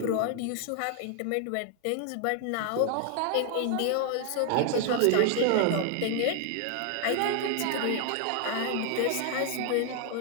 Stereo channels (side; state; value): both; different; correlation 0.00